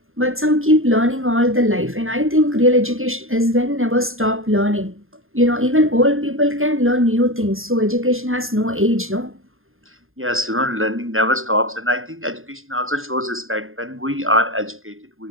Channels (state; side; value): late; left; 0.60 ms